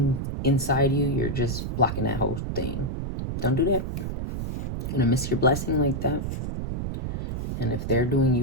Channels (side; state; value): right; noise; rumble, 3 dB below the sound